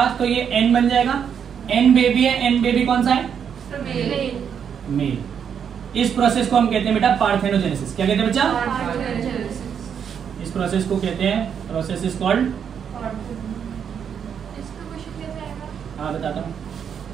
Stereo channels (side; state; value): left; quieter; 7.7 dB